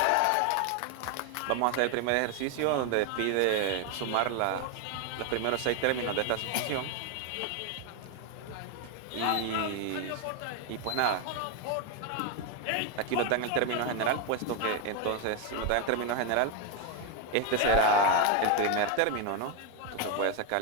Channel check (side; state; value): both; different; correlation 0.01